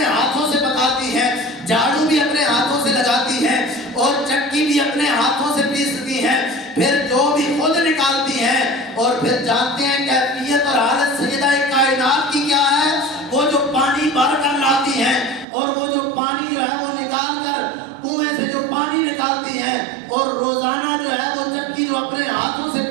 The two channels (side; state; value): left; drops out; at 15.5 s